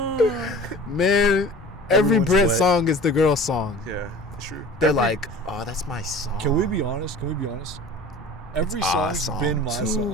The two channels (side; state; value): both; normal; correlation 0.42